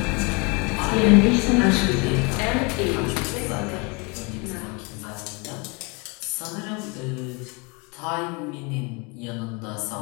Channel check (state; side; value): quieter; right; 30.3 dB